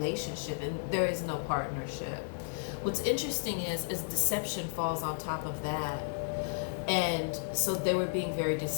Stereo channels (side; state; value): right; silent; digital silence